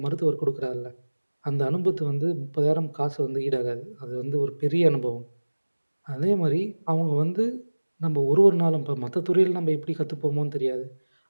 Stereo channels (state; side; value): inverted; both; correlation -1.00